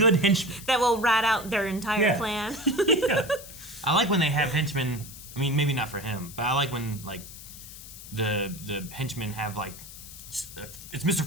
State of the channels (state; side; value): noise; left; hiss, 14 dB below the sound